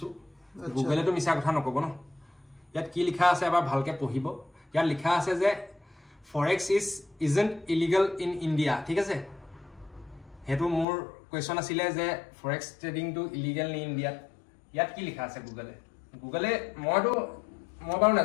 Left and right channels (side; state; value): right; drops out; at 10.9 s